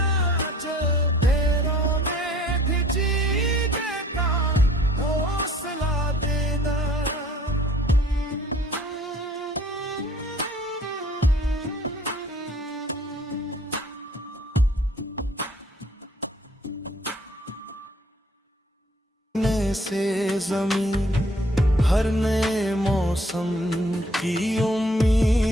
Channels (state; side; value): normal; both; correlation 0.56